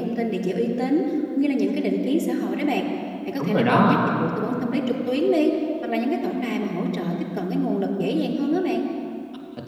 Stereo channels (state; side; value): identical; both; correlation 1.00